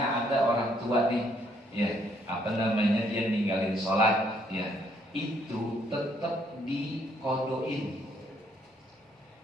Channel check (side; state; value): both; normal; correlation 0.68